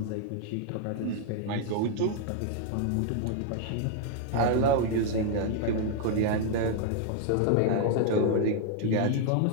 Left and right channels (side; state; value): both; different; correlation 0.00